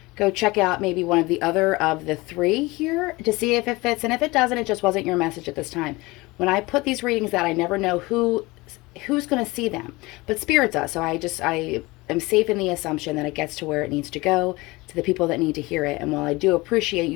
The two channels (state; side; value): quieter; right; 22.4 dB